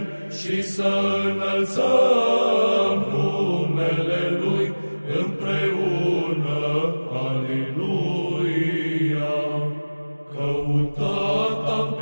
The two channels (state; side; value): inverted; both; correlation -1.00